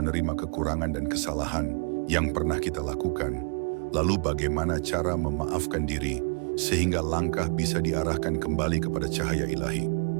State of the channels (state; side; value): quieter; left; 37.6 dB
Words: kekurangan dan kesalahan yang pernah kita lakukan, lalu bagaimana cara memaafkan diri sehingga langkah bisa diarahkan kembali kepada cahaya ilahi.